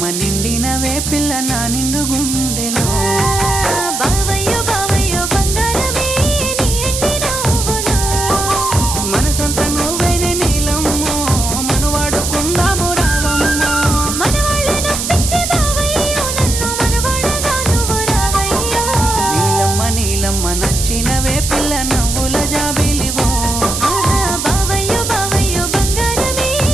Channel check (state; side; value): noise; right; hiss, 3 dB below the sound